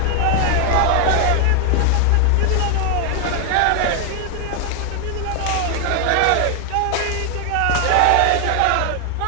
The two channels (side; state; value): both; different; correlation 0.00